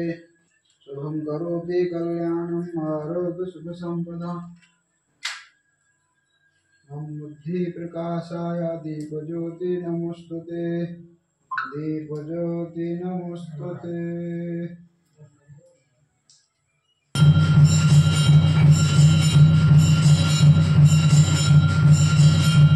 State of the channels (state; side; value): identical; both; correlation 1.00